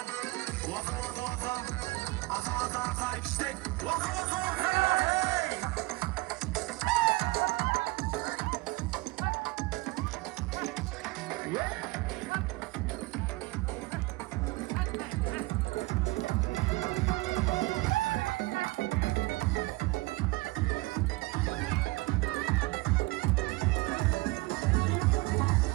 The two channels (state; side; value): quieter; left; 22.6 dB